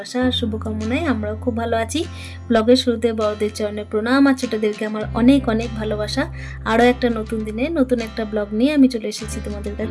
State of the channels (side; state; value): both; identical; correlation 1.00